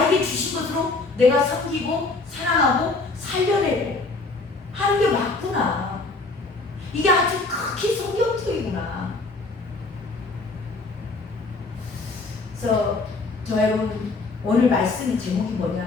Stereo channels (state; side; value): quieter; right; 3.6 dB